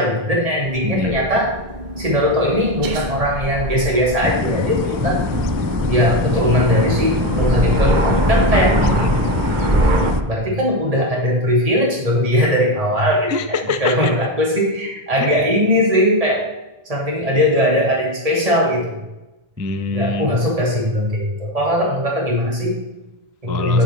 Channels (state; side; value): late; left; 1.7 ms